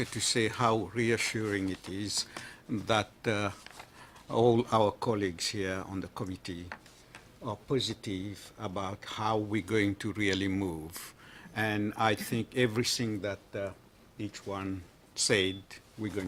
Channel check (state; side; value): identical; both; correlation 1.00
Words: to say how reassuring it is that all our colleagues here on the committee are positive about how we're going to really move. And I think everything that each one said, we're